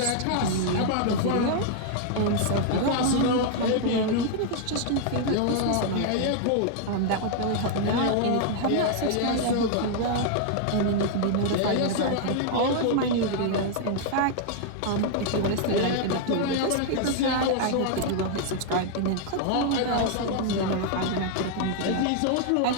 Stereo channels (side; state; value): both; different; correlation 0.00